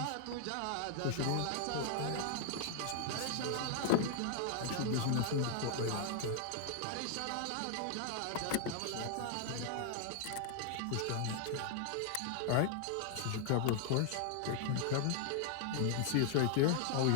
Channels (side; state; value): both; different; correlation 0.00